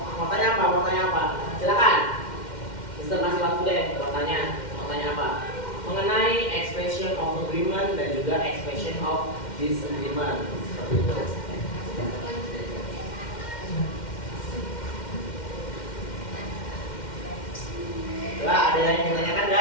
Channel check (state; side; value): late; right; 2.1 ms